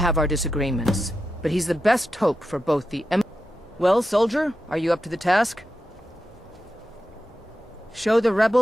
our disagreements, but he's the best hope for both the Well, soldier, are you up to the task? Show the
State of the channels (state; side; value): normal; both; correlation 0.89